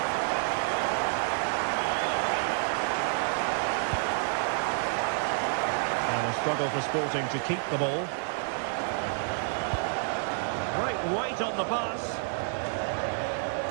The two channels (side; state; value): left; silent; 58 dB below the other